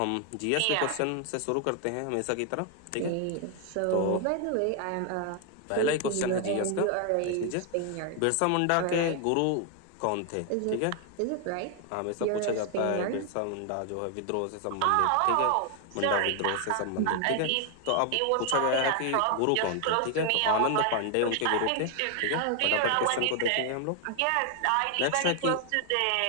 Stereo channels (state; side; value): different; both; correlation 0.00